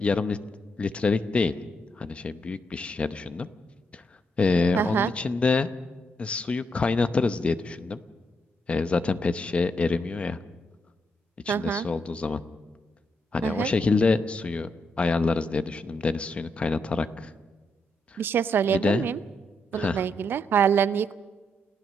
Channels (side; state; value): both; normal; correlation 0.79